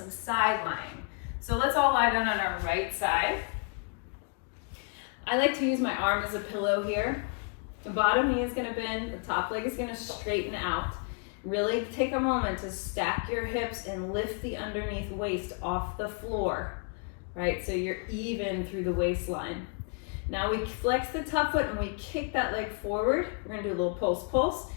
side lying. So let's all lie down on our right side. I like to use my arm as a pillow here. The bottom knee is going to bend, the top leg is going to straighten out. Really take a moment to stack your hips and lift the underneath waist off the floor, right? So you're even through the waistline. Now we flex the top foot and we kick that leg forward. We're going to do a little pulse,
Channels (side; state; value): right; quieter; 37.8 dB